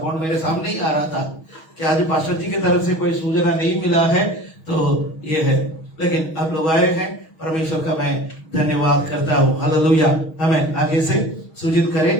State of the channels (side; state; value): right; late; 6.3 ms